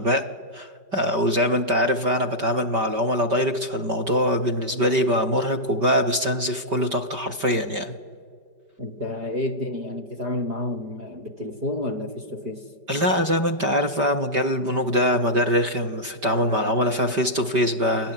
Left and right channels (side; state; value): left; late; 5.1 ms